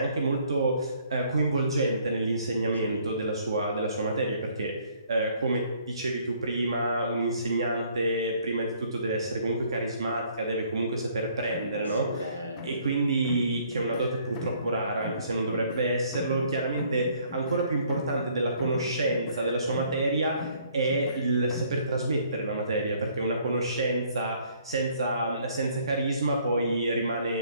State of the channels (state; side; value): inverted; both; correlation -0.62